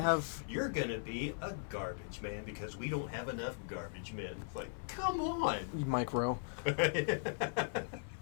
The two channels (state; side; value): silent; right; 52 dB below the other